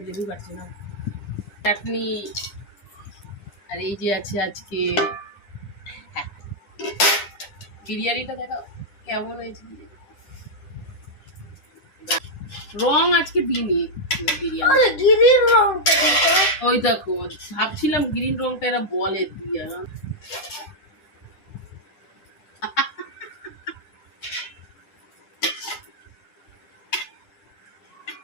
লেবু কাটছি না। চাটনি, আর এই যে আছে আজকে বিরিয়ানিটা দেখো কেমন হয়েছে। রং আজকে দিইনি বিরিয়ানি। ওই দেখো ভাবছিলাম গ্রিন রংটা এরা বলে দিয়ে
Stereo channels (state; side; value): late; right; 10 ms